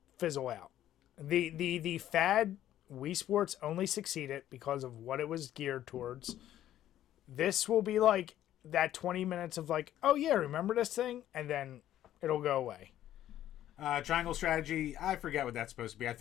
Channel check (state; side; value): quieter; right; 12.3 dB